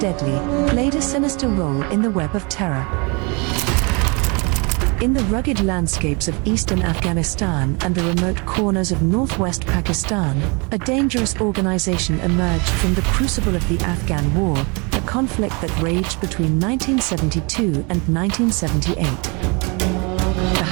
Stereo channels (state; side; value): quieter; left; 30.9 dB